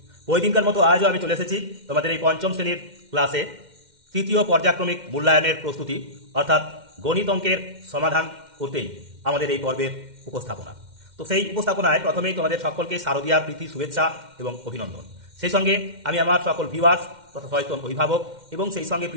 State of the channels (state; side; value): late; left; 2.1 ms